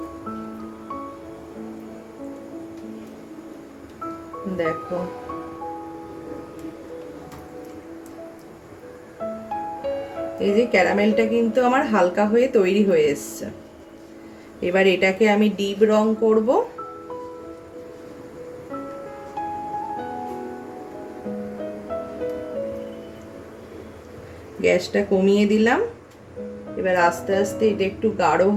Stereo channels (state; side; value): identical; both; correlation 1.00